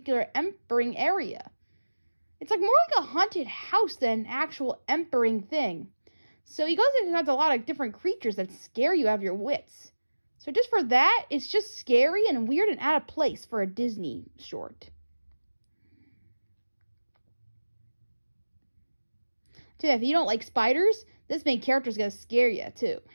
empering area. It's more like a haunted house than an actual empering thing. So he goes and has a lot of different creatures that scare you out of your wits. So just for that, it's just scary and weird and out of place for a Disney short. So if you don't like spiders, this main character is going to scare you too.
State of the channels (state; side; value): inverted; both; correlation -1.00